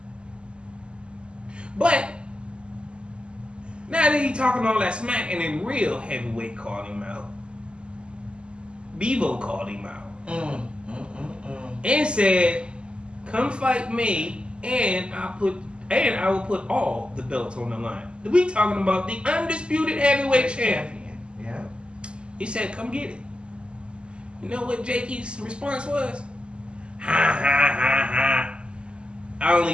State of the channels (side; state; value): left; late; 0.051 ms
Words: But now that he talking all that smack and then real heavyweight called him out. Bevo called him out. And said, come fight me and I will put all the belts on the line. We talking about the undisputed heavyweight champion. Yeah. He said, come get it. You know what Jakey's response was? Ha ha ha ha. I only